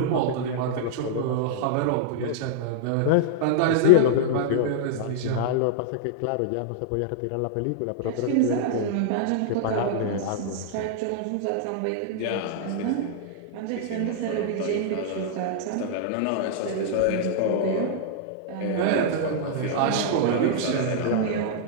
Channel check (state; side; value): different; both; correlation -0.01